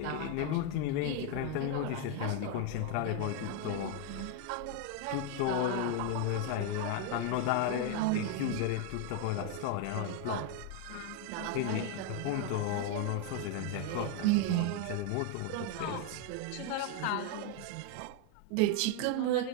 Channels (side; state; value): both; different; correlation 0.01